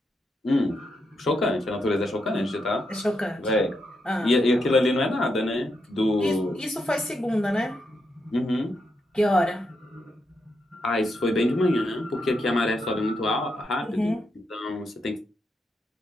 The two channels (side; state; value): both; normal; correlation 0.82